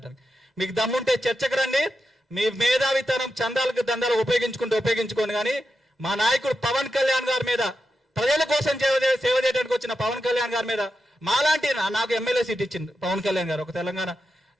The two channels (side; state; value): both; normal; correlation 0.88